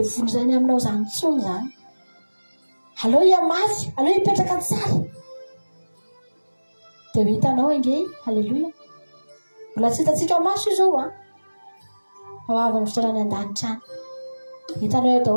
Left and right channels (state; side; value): inverted; both; correlation -1.00